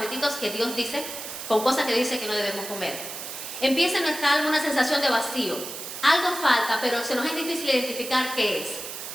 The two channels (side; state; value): right; noise; hiss, 9 dB below the sound